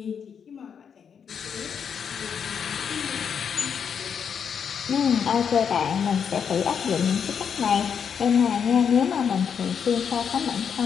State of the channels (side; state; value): right; quieter; 7.2 dB